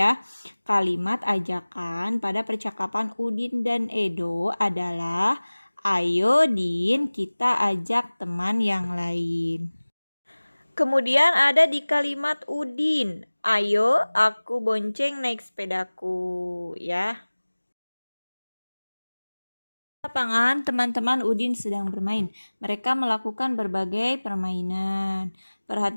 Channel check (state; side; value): inverted; both; correlation -1.00